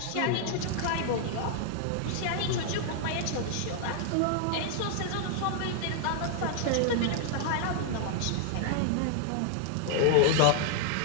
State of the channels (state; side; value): different; both; correlation 0.00